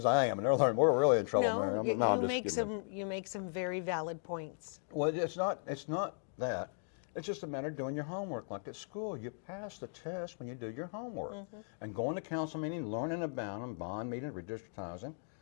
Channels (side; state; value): right; silent; digital silence